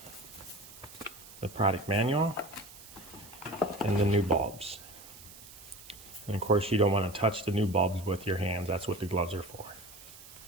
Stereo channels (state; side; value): noise; right; hiss, 18 dB below the sound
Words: the product manual and the new bulbs. And of course you don't want to touch the new bulbs with your hands. That's what the gloves are for.